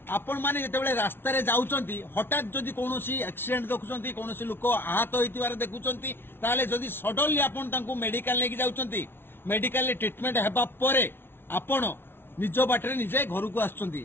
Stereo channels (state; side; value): late; right; 0.11 ms